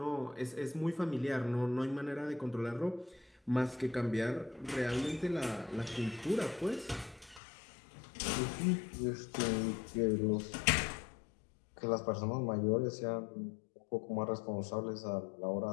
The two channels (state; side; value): drops out; right; at 7.4 s